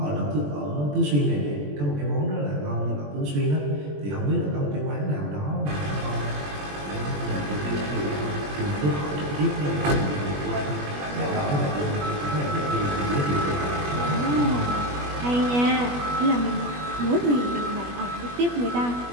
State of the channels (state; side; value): late; left; 21 ms